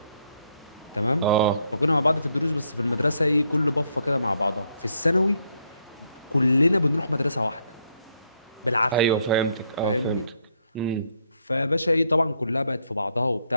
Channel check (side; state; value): both; inverted; correlation -0.72